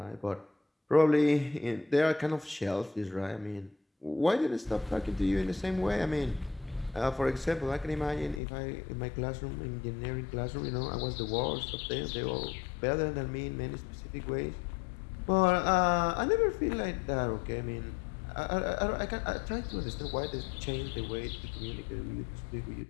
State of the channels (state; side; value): drops out; right; at 8.4 s